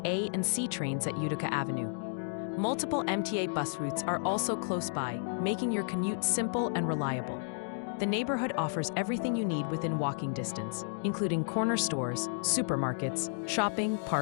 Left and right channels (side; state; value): right; silent; digital silence